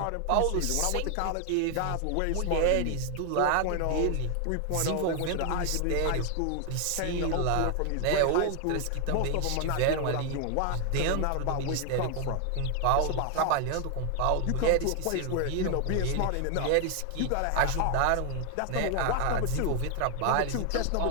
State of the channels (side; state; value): both; different; correlation 0.00